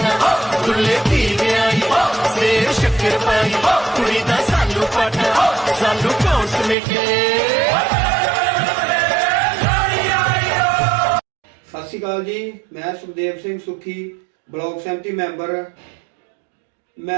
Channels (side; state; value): left; drops out; at 6.8 s